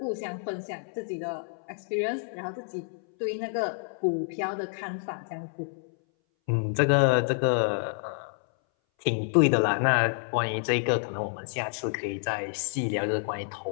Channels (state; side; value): silent; right; 59 dB below the other